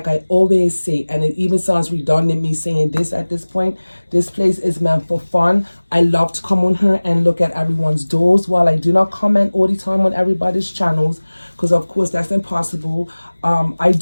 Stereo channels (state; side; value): inverted; both; correlation -1.00